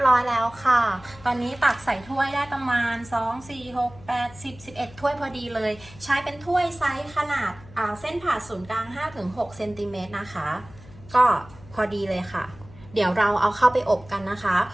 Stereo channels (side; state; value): left; noise; hum, 21 dB below the sound